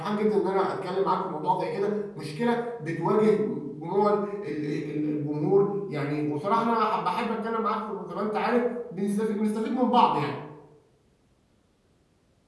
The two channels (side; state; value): both; identical; correlation 1.00